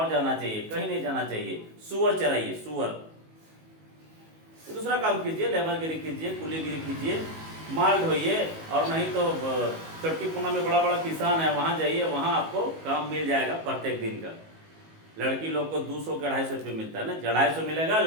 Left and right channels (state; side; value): late; left; 19 ms